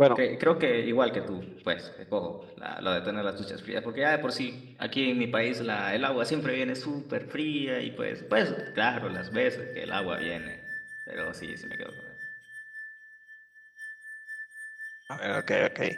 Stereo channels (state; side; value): identical; both; correlation 1.00